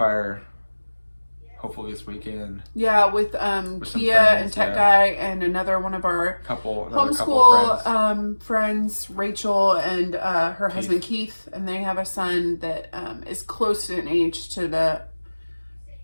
Hopefully this weekend. Yeah, with Kia and Tech Guy and another one of our homeschool friends, Rachel and her husband Keith, and they have a son that is close in age to the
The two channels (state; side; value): inverted; both; correlation -1.00